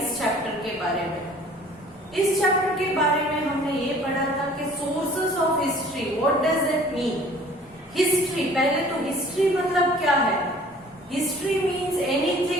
चैप्टर के बारे में। इस चैप्टर के बारे में हमने ये पढ़ा था कि sources of history, what does it mean. History, पहले तो हिस्ट्री मतलब क्या है। History means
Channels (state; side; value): normal; both; correlation 0.51